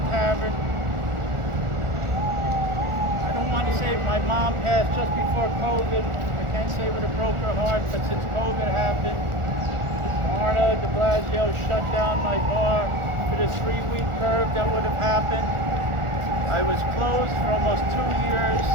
tavern. I don't want to say my mom passed just before COVID. I can't say with a broken heart, but since COVID happened, Varma de Blasio shut down my bar for this 3-week curve that would have happened. I was closed for almost 2 years.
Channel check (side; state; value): left; late; 1.4 ms